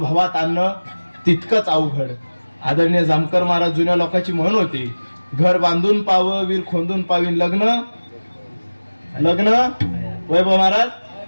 आणणं तितकंच अवघड. आदरणीय जामकर महाराज जुन्या लोकांची म्हण होती, घर बांधून पाव वीर खोंदून पावीन, लग्न वैभव महाराज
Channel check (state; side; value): inverted; both; correlation -1.00